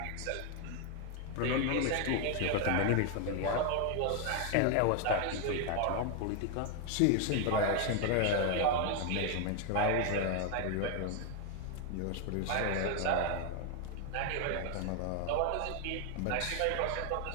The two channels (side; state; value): both; different; correlation 0.01